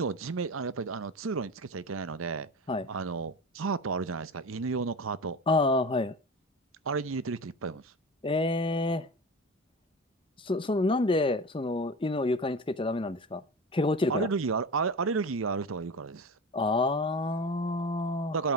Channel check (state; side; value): normal; both; correlation 0.30